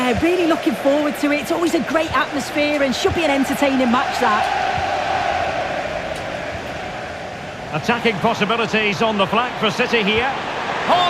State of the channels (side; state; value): both; identical; correlation 1.00